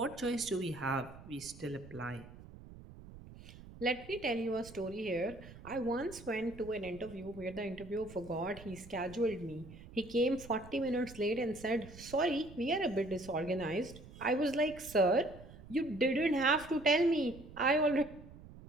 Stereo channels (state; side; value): noise; right; rumble, 17 dB below the sound